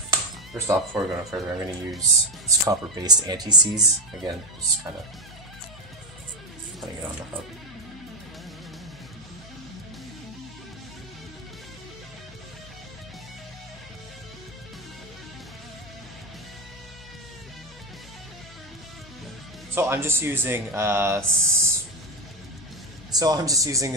First off, before we go no further, I'm going to use this copper-based anti-seize. Again, just kind of putting it on the hub. So I'm just using a silicone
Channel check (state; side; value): noise; left; hum, 20 dB below the sound